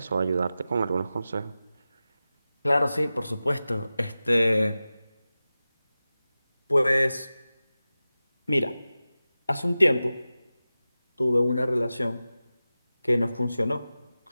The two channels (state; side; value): inverted; both; correlation -0.95